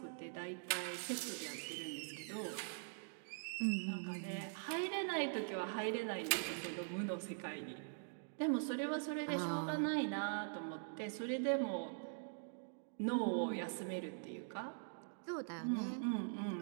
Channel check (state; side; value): silent; left; digital silence